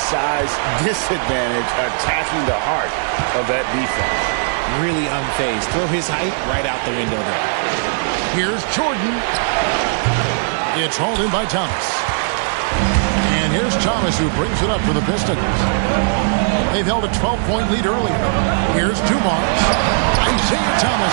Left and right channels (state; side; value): silent; left; digital silence